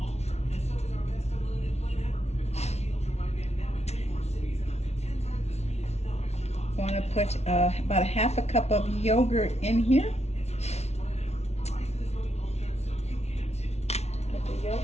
want to put about a half a cup of yogurt in here. Put the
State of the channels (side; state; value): right; late; 0.31 ms